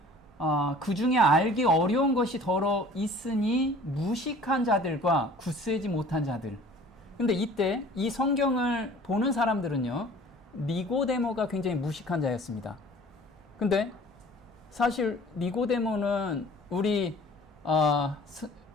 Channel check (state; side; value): normal; both; correlation 0.48